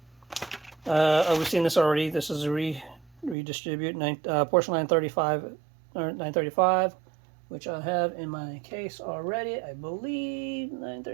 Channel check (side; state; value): left; drops out; at 3.4 s